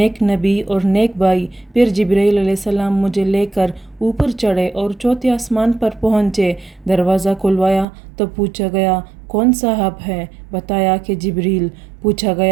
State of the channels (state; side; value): drops out; left; at 7.9 s